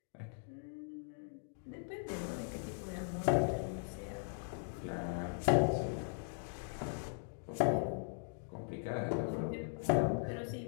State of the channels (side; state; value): right; silent; digital silence